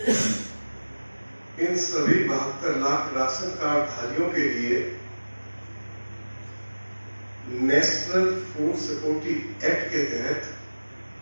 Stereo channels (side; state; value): both; inverted; correlation -1.00